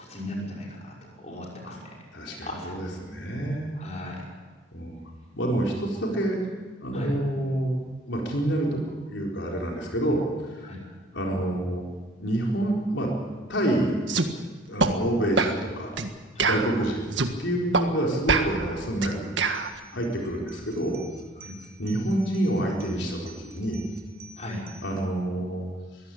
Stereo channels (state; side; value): normal; both; correlation 0.52